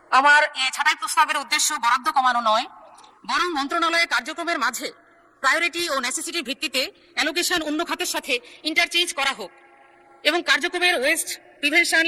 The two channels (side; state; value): both; identical; correlation 1.00